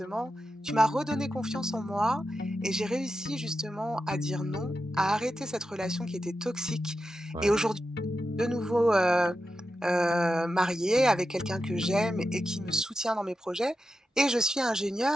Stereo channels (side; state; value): both; normal; correlation 0.90